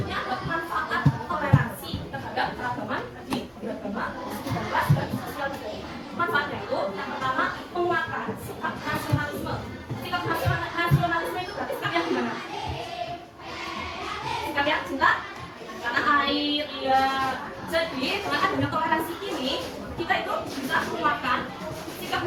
ada manfaat toleransi terhadap keragaman tadi beragama, dan ras dan sosial budaya. Manfaatnya itu yang pertama menguatkan sikap nasionalisme. Sikap nasionalisme itu berarti sikap yang gimana? Sikap yang cinta tanah air, iya. Jadi dengan adanya toleransi ini kita itu bisa menguatkan sikap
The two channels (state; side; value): identical; both; correlation 1.00